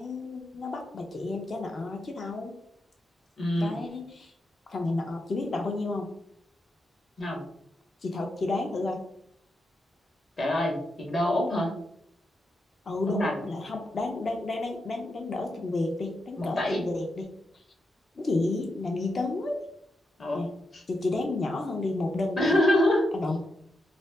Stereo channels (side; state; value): both; normal; correlation 0.85